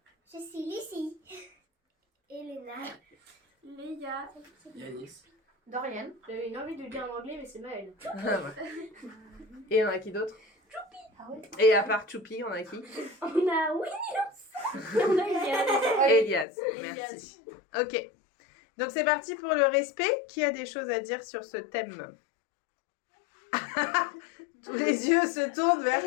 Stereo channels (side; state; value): right; drops out; at 16.4 s